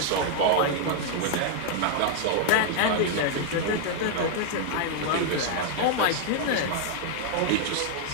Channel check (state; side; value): different; both; correlation -0.01